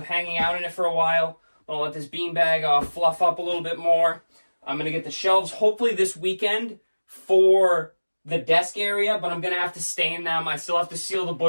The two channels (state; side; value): inverted; both; correlation -1.00